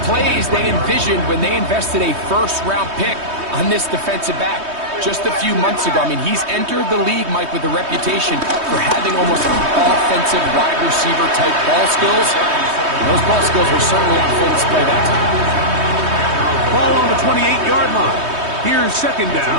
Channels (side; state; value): left; late; 3.2 ms